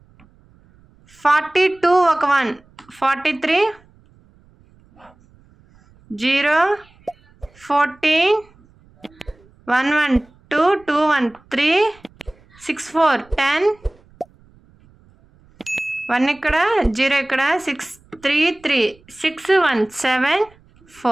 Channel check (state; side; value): noise; right; rumble, 30 dB below the sound